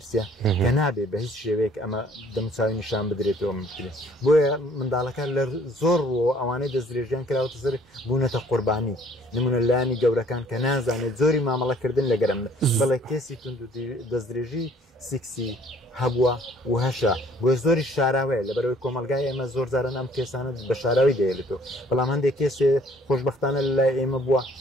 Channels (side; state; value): both; normal; correlation 0.58